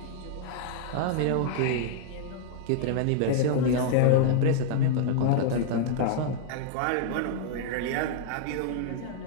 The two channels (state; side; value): different; both; correlation -0.01